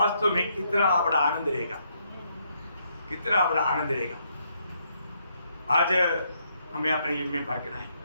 में कितना बड़ा आनंद रहेगा, कितना बड़ा आनंद रहेगा। आज हमें अपने जीवन में पार है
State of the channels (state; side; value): inverted; both; correlation -0.75